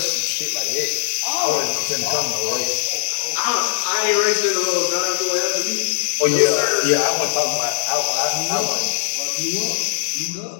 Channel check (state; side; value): silent; right; digital silence